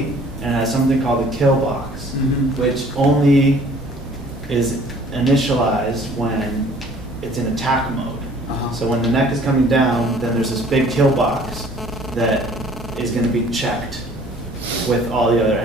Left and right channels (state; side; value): normal; both; correlation 0.54